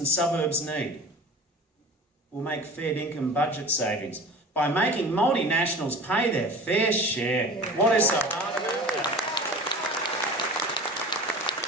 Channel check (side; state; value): both; normal; correlation 0.38